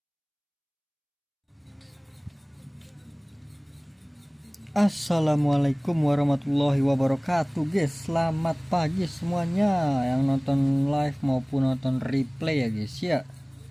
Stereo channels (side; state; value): both; identical; correlation 1.00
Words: Assalamualaikum warahmatullahi wabarakatuh guys. Selamat pagi semuanya yang nonton live maupun nonton replay ya guys ya.